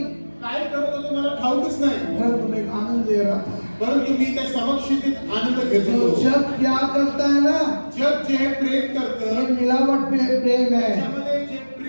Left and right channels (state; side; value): inverted; both; correlation -1.00